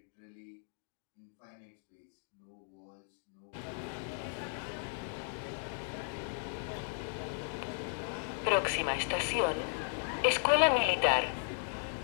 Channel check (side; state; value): right; silent; digital silence